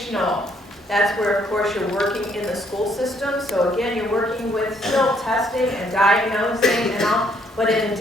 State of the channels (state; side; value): normal; both; correlation 0.68